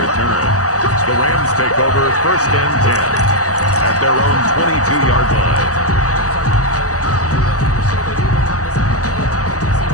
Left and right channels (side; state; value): right; late; 0.66 ms